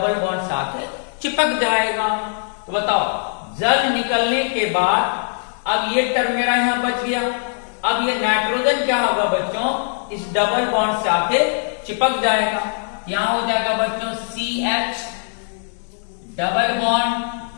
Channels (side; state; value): right; silent; digital silence